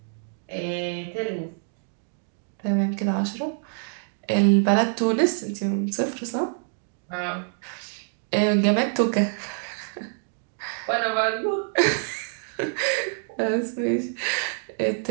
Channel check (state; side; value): silent; left; digital silence